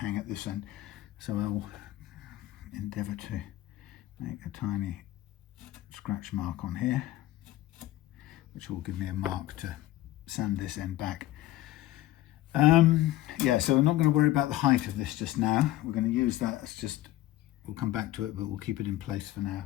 at this end. So I'll endeavour to make a tiny scratch mark on here, which will give me a mark to sand this end back. Yeah, so we're not going to worry about the height of this just now. We're going to use that as just, we'll come back to it, but we'll keep it in place for now.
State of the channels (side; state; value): right; quieter; 15.2 dB